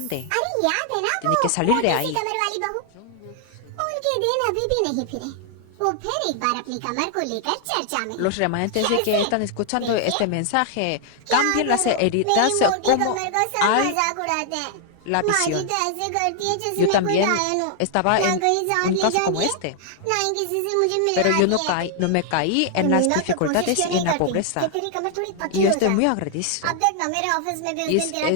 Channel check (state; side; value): different; both; correlation 0.00